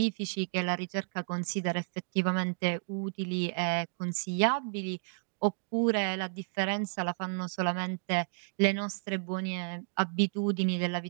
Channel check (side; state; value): left; silent; digital silence